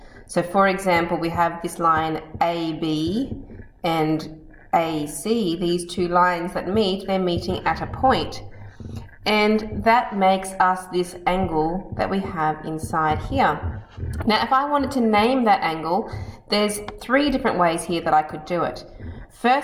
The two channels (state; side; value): identical; both; correlation 1.00